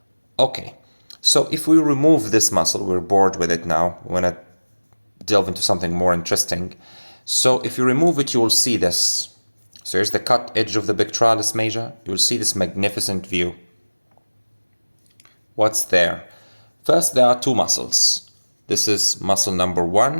Okay, so if we remove this muscle, we're bored with it now. We want to delve into something more interesting. So if you remove it, you will see this. So here's the cut edge of the pectoralis major. You'll see this magnificent view. What's there? First, there are two muscles. This is muscle number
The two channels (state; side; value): inverted; both; correlation -1.00